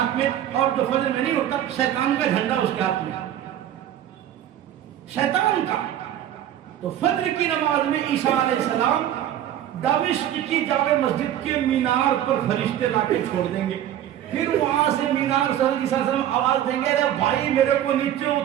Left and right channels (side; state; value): left; quieter; 11.4 dB